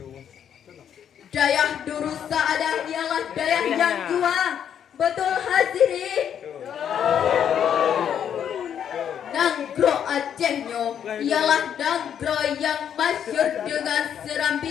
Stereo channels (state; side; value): quieter; right; 8.9 dB